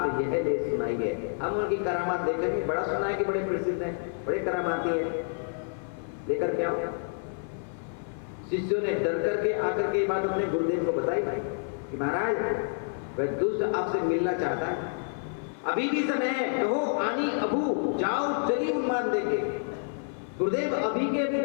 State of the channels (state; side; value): silent; right; 56 dB below the other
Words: यह ले सुनाई है, हम उनकी करामात देखेंगे। बड़ा सुना है कि बड़े प्रसिद्ध हैं, बड़े करामाती हैं, लेकर के आओ। शिष्यों ने डर करके आकर के बात अपने गुरुदेव को बताई कि महाराज वह दुष्ट आपसे मिलना चाहता है, अभी भी समय है, कहो आनी अबू जाओ चली उन्मान देंगे। गुरुदेव अभी के अभी